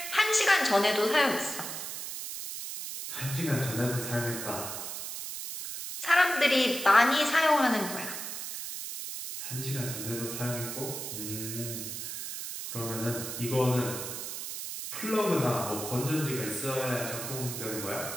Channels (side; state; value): right; noise; hiss, 6 dB below the sound